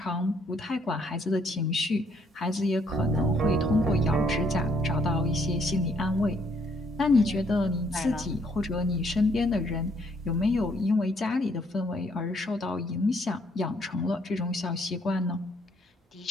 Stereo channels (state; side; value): normal; both; correlation 0.68